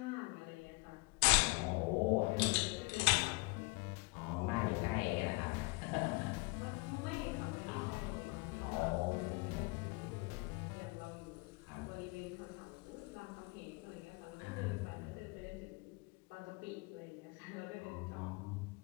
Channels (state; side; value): quieter; right; 27.4 dB